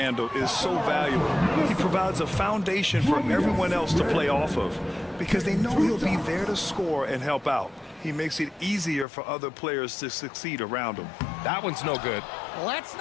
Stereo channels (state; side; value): drops out; right; at 9.1 s